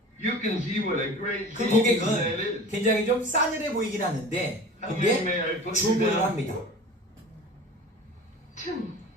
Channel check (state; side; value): normal; both; correlation 0.39